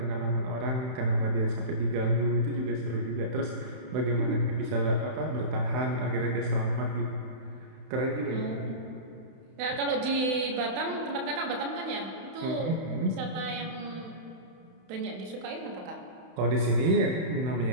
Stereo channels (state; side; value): late; left; 32 ms